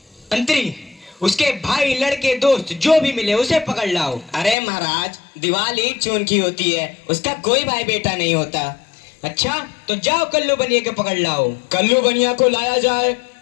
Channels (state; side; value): drops out; right; at 4.5 s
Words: मंत्री, उसके भाई, लड़के, दोस्त जो भी मिले उसे पकड़ लाओ। अरे महाराज, दीवार ईंट चून की होती है, उसका कोई भाई बेटा नहीं होता। अच्छा, तो जाओ कल्लू बनिया को पकड़ लाओ। कल्लू बनिया को लाया जाए।